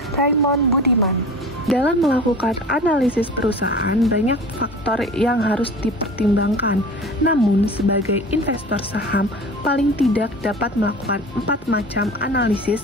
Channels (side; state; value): both; normal; correlation 0.38